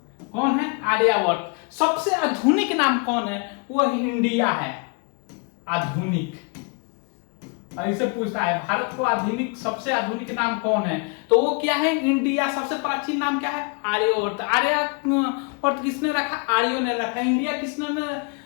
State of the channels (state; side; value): quieter; right; 34.4 dB